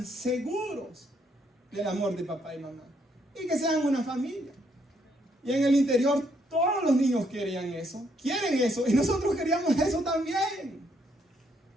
seguros del amor de papá y mamá. Y que sean una familia. Y en el interior todos los niños querían eso. Quieren eso. Y nosotros queríamos eso también.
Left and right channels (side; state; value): both; normal; correlation 0.72